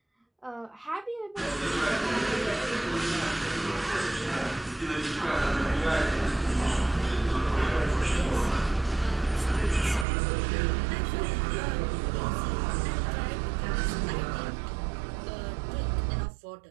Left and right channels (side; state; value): left; drops out; at 10.1 s